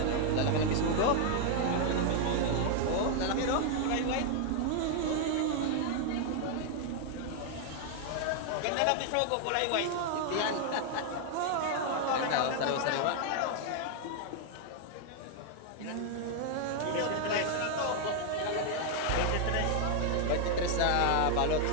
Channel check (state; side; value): different; both; correlation 0.00